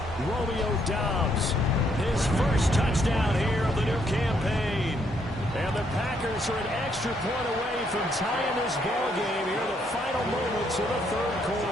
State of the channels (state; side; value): normal; both; correlation 0.72